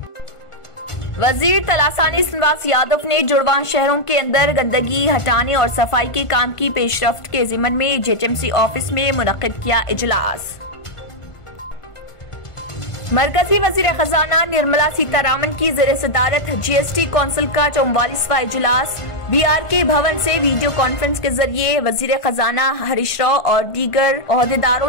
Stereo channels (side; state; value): right; late; 1.5 ms